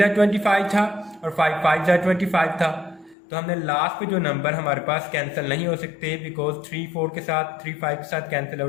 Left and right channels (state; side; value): drops out; right; at 3.2 s